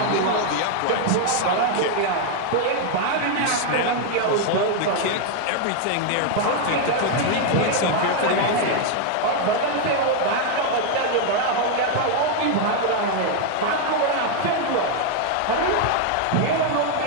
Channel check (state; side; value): different; both; correlation 0.01